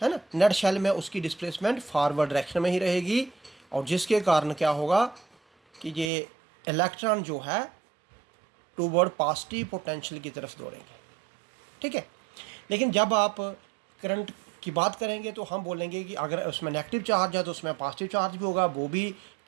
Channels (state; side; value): drops out; left; at 6.1 s